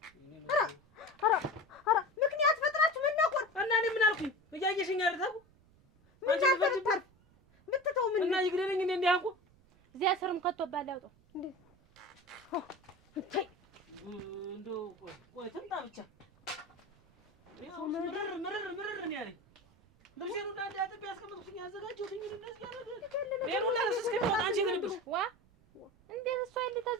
ኧረ ምክንያት ፈጥራችሁ መናቆር እና እኔ ምን አልኩኝ? እያየሽኝ አይደል? ምን ታርፍ ምትተው ምን እና ይግደለኝ እኔ እንዲህ አንኩ እዚያ ስርም ከተባለ ያውጣው እንዴ እንደው ቆይ ትምጣ ብቻ ምርር ነው ያለኝ። ልብሴን ሁላ አጥቤ ያስቀመጥኩኝ ያዘጋጀሁትኝ እንደዚህ ያደረገ ሌላ እስከሚወጣ አንቺ የት ነበርሽ? እንዴት እሷ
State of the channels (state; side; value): noise; right; rumble, 30 dB below the sound